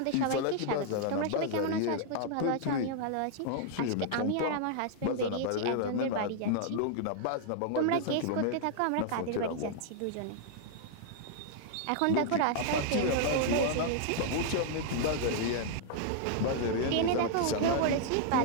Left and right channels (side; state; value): both; different; correlation -0.01